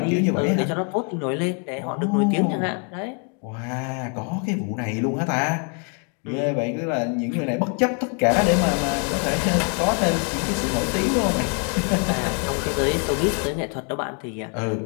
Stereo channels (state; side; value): quieter; right; 39.1 dB